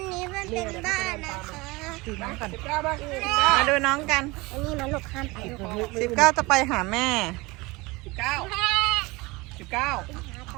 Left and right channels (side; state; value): left; quieter; 23.6 dB